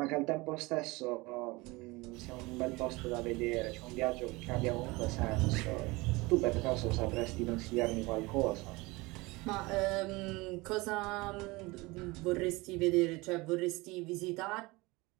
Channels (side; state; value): left; quieter; 23.2 dB